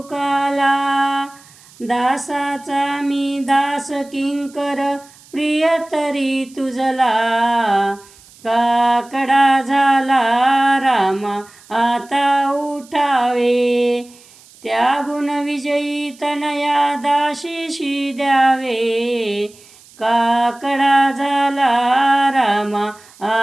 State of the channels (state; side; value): noise; right; hiss, 25 dB below the sound